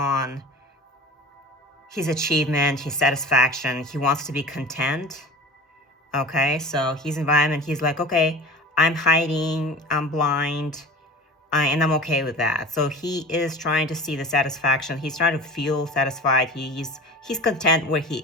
his achievement, his satisfaction. He wants to be content. Okay, so his environment, he's like, okay, I'm hiding, I'm blind, and I'm okay with that. So he is trying to see the satisfaction. He's trying to feel satisfied. He's content where he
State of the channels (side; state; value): both; normal; correlation 0.36